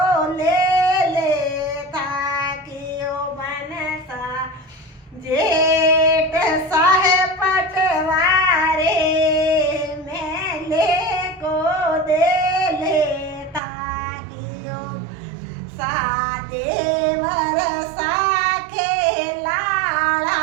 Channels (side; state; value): left; drops out; at 13.6 s